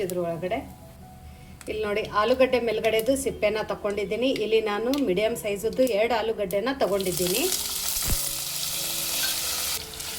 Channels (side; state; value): both; identical; correlation 1.00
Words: ಇದ್ರೊಳಗಡೆ ಇಲ್ಲಿ ನೋಡಿ ಆಲೂಗಡ್ಡೆ ಮೇಲ್ಗಡೆದು ಸಿಪ್ಪೆನ ತಗೊಂಡಿದ್ದೀನಿ. ಇಲ್ಲಿ ನಾನು ಮೀಡಿಯಮ್ ಸೈಜದ್ದು 2 ಆಲೂಗಡ್ಡೆನ ತಗೊಂಡಿದ್ದೀನಿ.